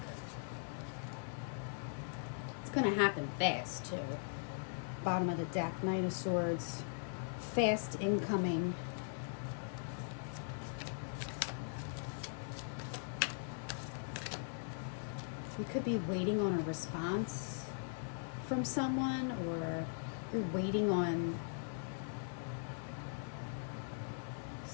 It's going to happen fast, too. Bottom of the deck, Knight of Swords. Fast incoming. You could be waiting on a response from someone, or you're waiting on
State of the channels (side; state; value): right; silent; 51 dB below the other